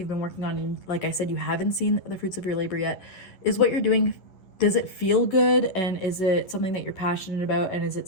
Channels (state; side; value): late; right; 11 ms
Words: been working on, and like I said, you haven't seen the fruits of your labor yet, is what you're doing, does it feel good? And is it something that you're passionate about? And is